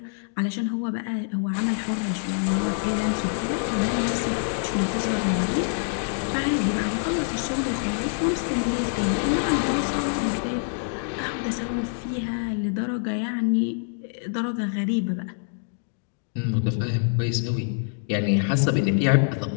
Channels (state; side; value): silent; right; digital silence